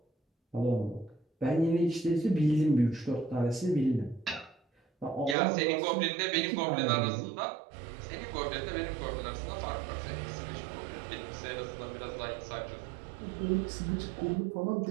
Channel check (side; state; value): left; drops out; at 5.4 s